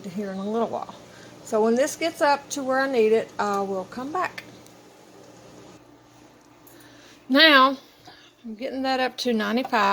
here in a little while. So when this gets up to where I need it, I will come back. Now, I'm getting that up to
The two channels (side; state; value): both; identical; correlation 1.00